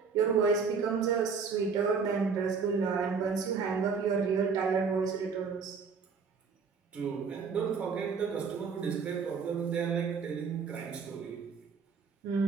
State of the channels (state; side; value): quieter; left; 5.6 dB